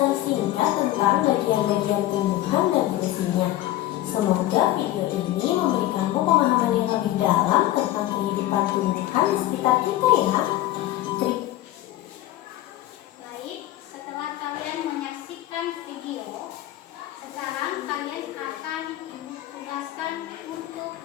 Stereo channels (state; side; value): quieter; right; 14.7 dB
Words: singkat tentang bagian-bagian tumbuhan dan fungsinya. Semoga video ini memberikanmu pemahaman yang lebih dalam tentang kehidupan tumbuhan di sekitar kita ya. Baik, setelah kalian menyaksikan video, sekarang kalian akan ditugaskan untuk